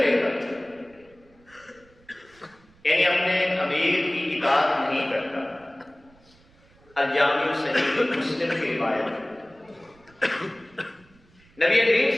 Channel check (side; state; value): right; noise; rumble, 29 dB below the sound